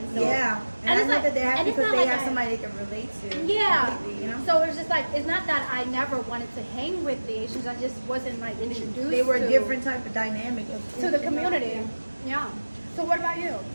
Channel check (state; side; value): inverted; both; correlation -1.00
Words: So, Yeah. And I it's know that they're happy and it's because not they like have I- somebody they can relate to. Yeah. completely, you know? So it's just like it's not that I never wanted to hang with the Asians. I just wasn't like introduced. They were a to, different type of dynamic of to the community. Yeah. So what about you?